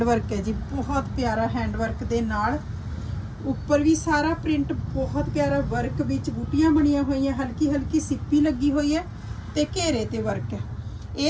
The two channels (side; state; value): both; identical; correlation 1.00